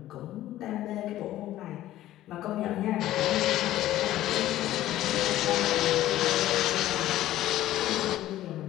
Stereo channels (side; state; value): right; quieter; 14.2 dB